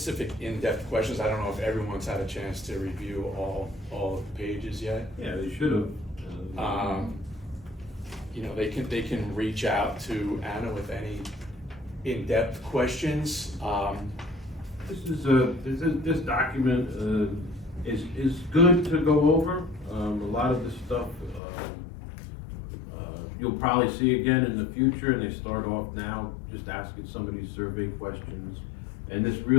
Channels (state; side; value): drops out; right; at 21.4 s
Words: in-depth questions, I don't know if everyone's had a chance to review all of the pages yet. Yeah, they should have. You know, they can reach out to Anna with any in-depth questions. This document is good to go over. A lot of this stuff you'll probably see again in the future, and they start off now just asking some of these survey questions. And this